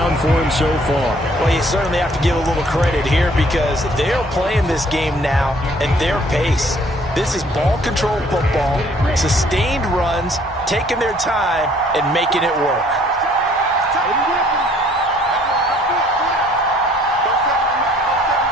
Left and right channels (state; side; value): normal; both; correlation 0.59